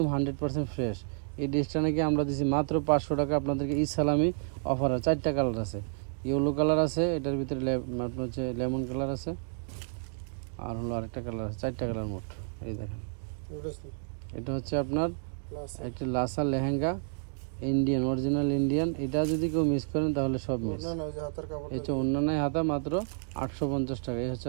100% ফ্রেশ। এই ড্রেসটা নাকি আমরা দিচ্ছি মাত্র 500 টাকা আপনাদেরকে। ঈদ সালামি অফার। 4টা কালার আছে, ইয়েলো কালার আছে, এটার ভিতরে আপনার হচ্ছে লেমন কালার আছে, আর হলো আরেকটা কালার আছে। 4টা কালার মোট। এই দেখেন, এটা হচ্ছে আপনার একটা Lhasa lehenga, Indian, original Indian. এটা যদি কেউ মিস করেন তাহলে সব মিস। এই হচ্ছে অন্যান্য হাতা, মাত্র 850 টাকা। এই হচ্ছে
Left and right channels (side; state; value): left; silent; digital silence